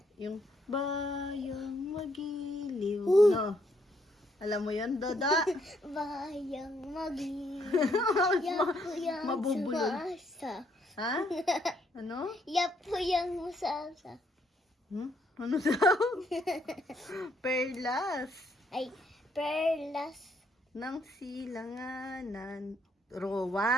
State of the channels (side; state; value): both; normal; correlation 0.72